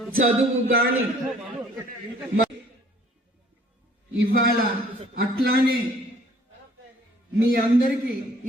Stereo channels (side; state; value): both; normal; correlation 0.57